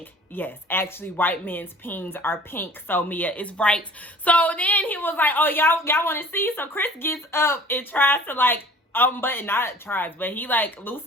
Yes, actually, white men's peens are pink. So Mia is right. So then he was like, oh, y'all want to see? So Chris gets up and tries to like unbutton, not tries, but he like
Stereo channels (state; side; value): normal; both; correlation 0.48